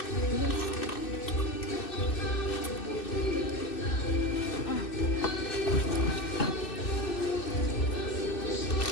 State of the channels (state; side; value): late; right; 2.6 ms